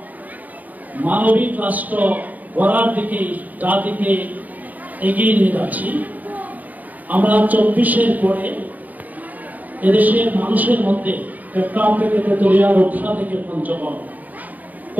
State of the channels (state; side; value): late; left; 0.079 ms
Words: মানবিক রাষ্ট্র গড়ার দিকে জাতিকে এগিয়ে নিয়ে যাচ্ছি। আমরা 24-এর পরে এদেশের মানুষের মধ্যে চট্টগ্রাম থেকে তেতুলিয়া, রূপসা থেকে পঞ্চগড়,